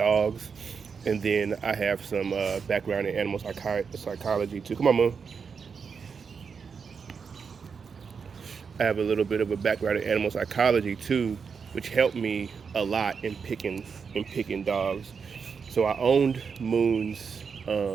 And then I have some background in animal psychology too. Come on, Moon. I have a little bit of a background in animal psychology too, which helped me a lot in picking dogs. So I owned Moon's.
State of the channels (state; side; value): quieter; left; 5.9 dB